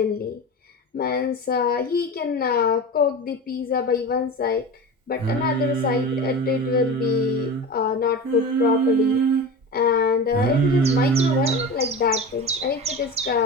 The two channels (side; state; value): both; normal; correlation 0.29